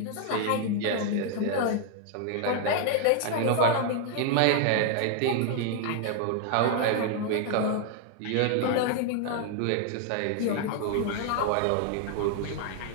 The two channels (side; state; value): both; different; correlation 0.00